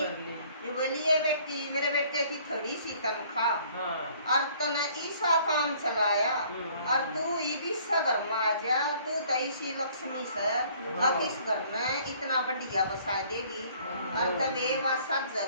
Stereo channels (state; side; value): inverted; both; correlation -0.57